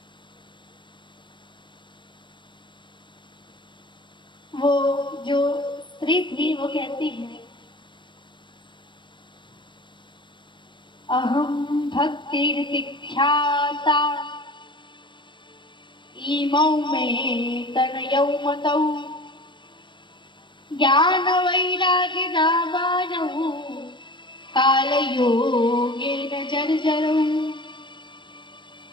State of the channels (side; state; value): right; late; 0.23 ms